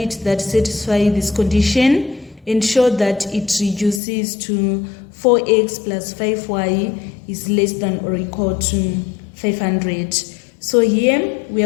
that satisfies this condition and show that it reduces to 4x plus 5y is less than or equal to 500. So here we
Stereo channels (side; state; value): right; drops out; at 4.0 s